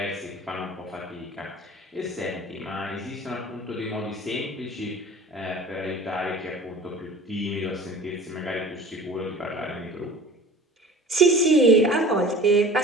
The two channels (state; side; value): normal; both; correlation 0.41